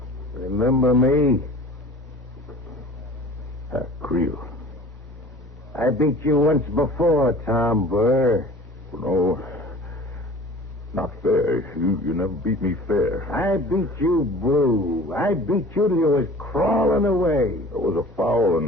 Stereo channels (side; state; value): both; normal; correlation 0.44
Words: Remember me? Creel. I beat you once before, Tom Burr. No, not fair. You never beat me fair. I beat you blue. I beat you till you was crawling away. It was a foul